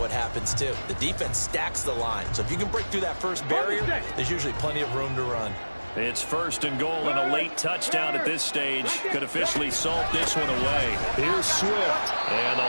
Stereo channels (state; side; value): inverted; both; correlation -1.00